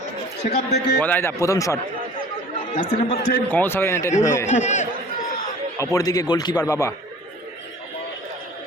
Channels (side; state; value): both; normal; correlation 0.47